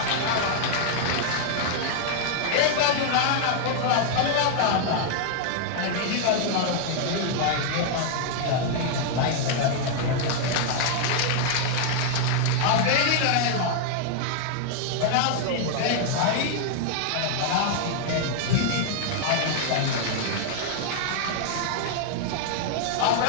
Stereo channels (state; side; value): different; both; correlation 0.00